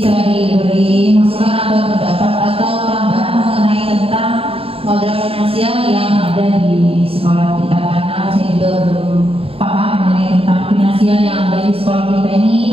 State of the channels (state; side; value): late; left; 0.27 ms